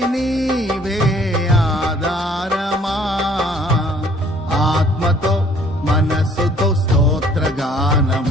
నీవే ఆధారమా ఆత్మతో మనస్సుతో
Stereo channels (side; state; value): both; normal; correlation 0.58